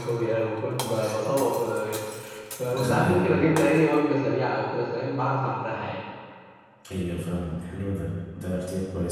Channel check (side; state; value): both; identical; correlation 1.00